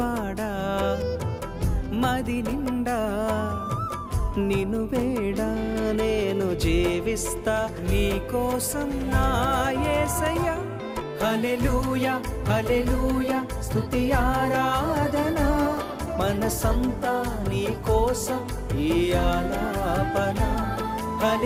మది నిండా నిన్ను వేడా నేను జీవిస్తా నీ కోసం నా యేసయ్యా హల్లెలూయా హల్లెలూయా స్తుతి ఆరాధన మనసంతా నీ కోసం ఈ ఆలాపన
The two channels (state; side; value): identical; both; correlation 1.00